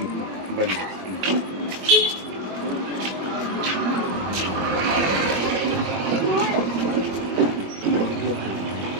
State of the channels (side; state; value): left; late; 21 ms